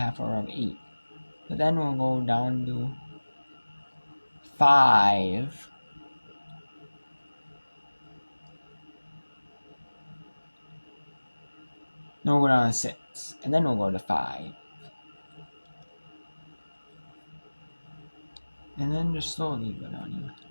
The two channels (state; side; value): inverted; both; correlation -1.00